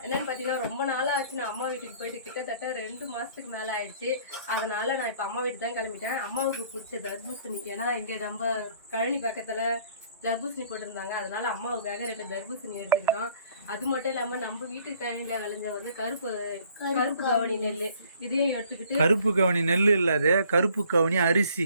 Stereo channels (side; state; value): both; inverted; correlation -0.58